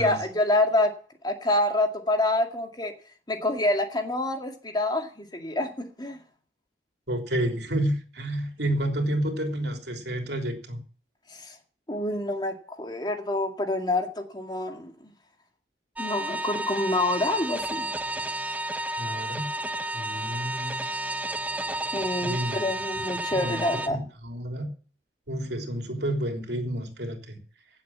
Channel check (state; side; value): normal; both; correlation 0.41